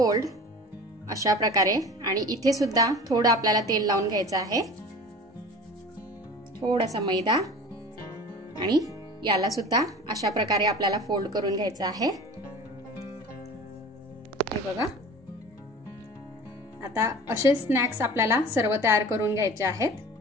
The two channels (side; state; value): both; normal; correlation 0.39